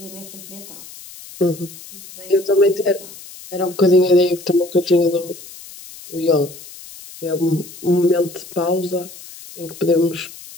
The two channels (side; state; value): left; noise; hiss, 17 dB below the sound